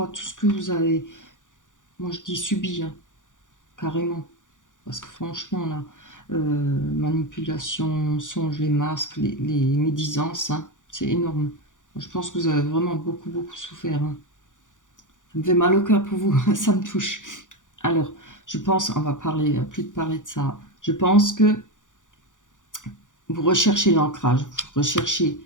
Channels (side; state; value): right; late; 0.87 ms